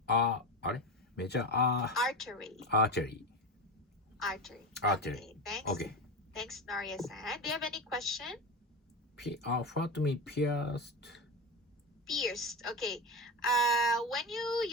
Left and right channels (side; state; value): both; normal; correlation 0.21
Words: Artery. artery. Okay, thanks. Okay. Thanks, Noria-san. Do you have any question? What mean pierced? Pierced. Okay. When you